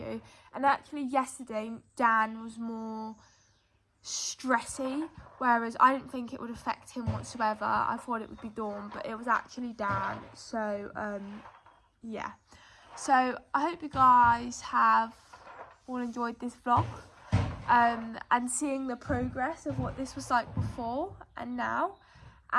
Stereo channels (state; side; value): identical; both; correlation 1.00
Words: And actually yesterday, Dan was more stressy, whereas I didn't think it would affect him whatsoever. I thought it would be Dawn, but it was actually Dan. So, yeah. So, I hope you guys have all enjoyed this vlog. And seeing the progress of what this was like before and now.